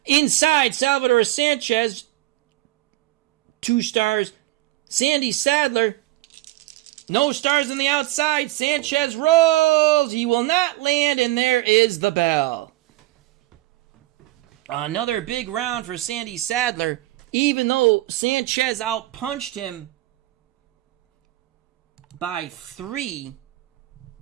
Inside, Salvador Sanchez. 2 stars. Sandy Sadler. No stars on the outside. Sanchez rolls. He will not land, and there is the bell. Another big round for Sandy Sadler. Even though Sanchez outpunched him by 3,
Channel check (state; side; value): quieter; left; 17.7 dB